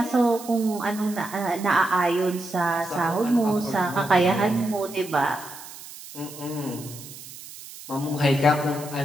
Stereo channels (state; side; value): noise; right; hiss, 15 dB below the sound